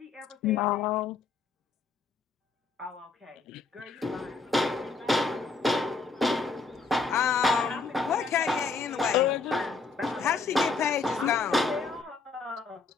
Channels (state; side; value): quieter; right; 4.2 dB